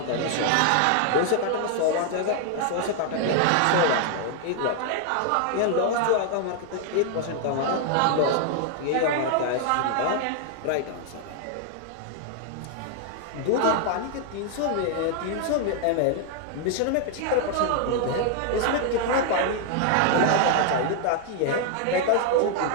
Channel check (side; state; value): both; different; correlation 0.00